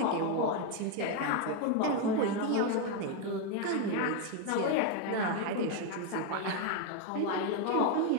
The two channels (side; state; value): both; different; correlation 0.01